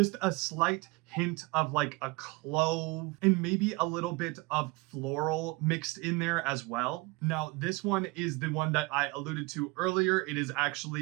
a slight hint of like a clove and maybe a little bit of floral mixed in there as well. Now, this one is the one that I alluded to earlier. It is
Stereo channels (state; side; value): quieter; left; 24.2 dB